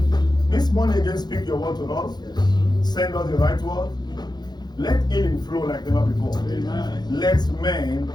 This morning again, speak your word to us. Send us the right word. Let healing flow like never before. Amen. Let men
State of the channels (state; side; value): late; right; 0.20 ms